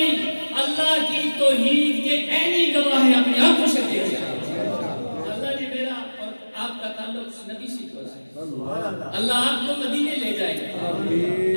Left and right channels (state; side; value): inverted; both; correlation -1.00